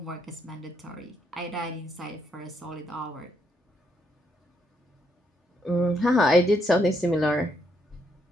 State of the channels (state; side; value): normal; both; correlation 0.76